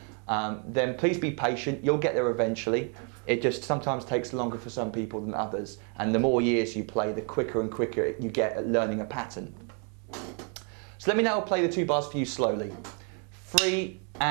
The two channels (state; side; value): quieter; left; 39.6 dB